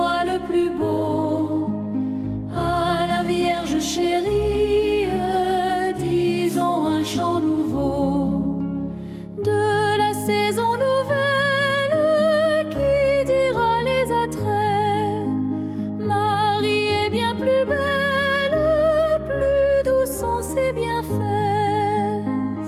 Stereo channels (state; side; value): identical; both; correlation 1.00